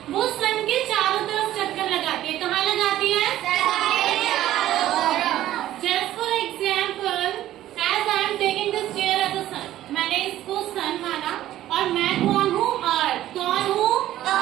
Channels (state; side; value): quieter; left; 13.5 dB